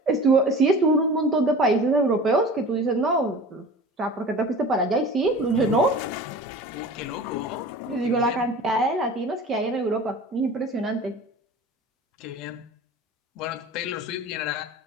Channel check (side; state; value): both; normal; correlation 0.39